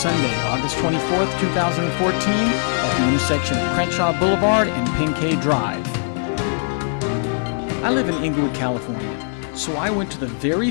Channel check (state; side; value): silent; right; 65 dB below the other